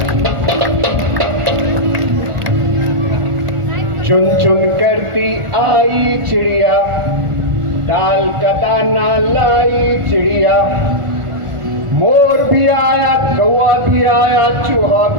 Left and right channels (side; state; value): left; late; 1.4 ms